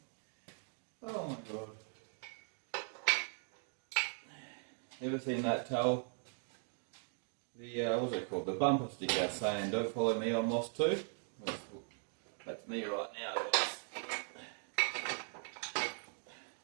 Ever seen that towel? The, what's it called? The bumper sticker saying, "Don't follow me, I'm lost too." That's me right now, guys.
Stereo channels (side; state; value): left; silent; 51 dB below the other